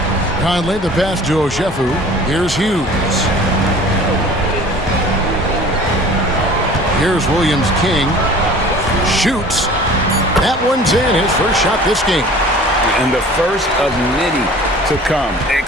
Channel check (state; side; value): normal; both; correlation 0.45